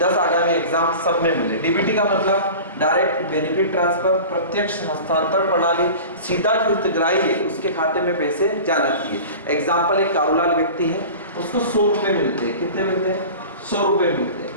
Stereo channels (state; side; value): inverted; both; correlation -0.36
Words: आगामी एग्जाम सब में मिले। डीबीटी का मतलब डायरेक्ट बेनिफिट ट्रांसफर, प्रत्यक्ष हस्तांतरण प्रणाली। सीधा जो हितग्राही है उसके खाते में पैसे जाना चाहिए। एग्जाम्पल एक कारोलाल व्यक्ति है, उसको 100 रुपए मिलते हैं। कितने मिलते हैं? 100 रुपए मिलते हैं।